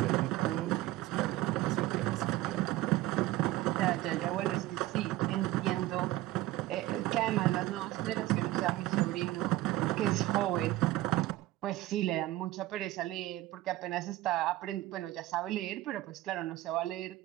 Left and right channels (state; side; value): quieter; left; 16.5 dB